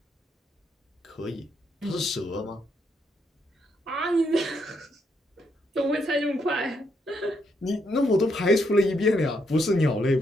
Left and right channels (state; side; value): normal; both; correlation 0.76